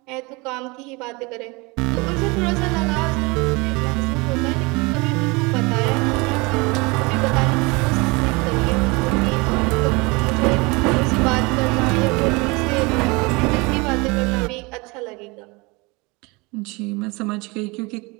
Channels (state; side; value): quieter; left; 26.3 dB